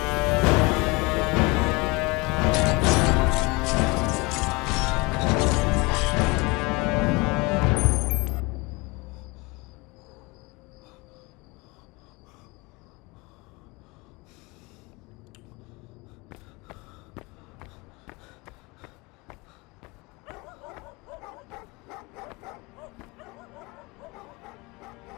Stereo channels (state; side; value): quieter; right; 25.6 dB